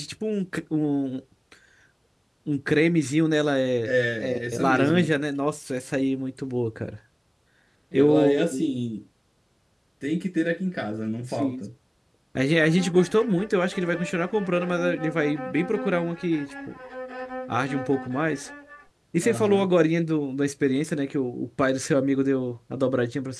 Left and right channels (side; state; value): both; identical; correlation 1.00